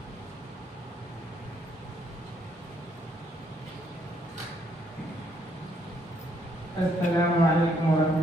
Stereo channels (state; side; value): normal; both; correlation 0.70